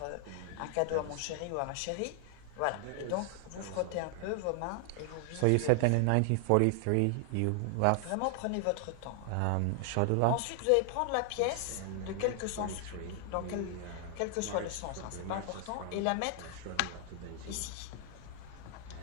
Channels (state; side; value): different; both; correlation 0.00